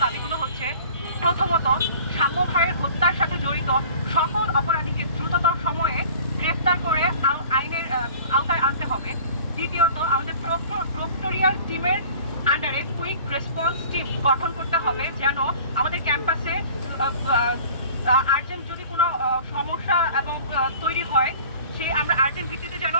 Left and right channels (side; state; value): both; inverted; correlation -0.45